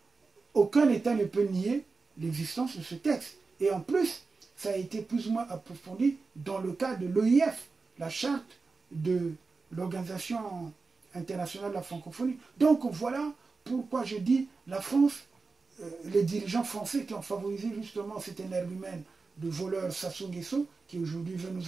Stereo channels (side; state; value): left; quieter; 4.2 dB